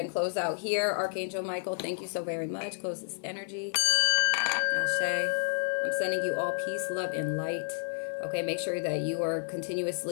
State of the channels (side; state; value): right; silent; 58 dB below the other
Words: close out here. Archangel Michael, thank you so very much. Close this energy. Ashe. I'm sending you all peace, love, and light. Okay, make sure that you are